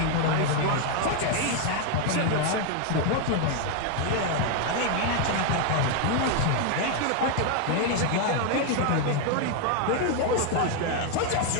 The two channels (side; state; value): both; different; correlation 0.00